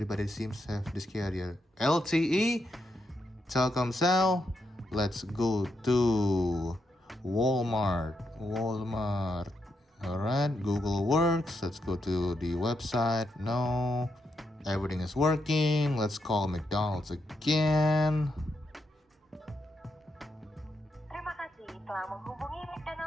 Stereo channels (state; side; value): normal; both; correlation 0.82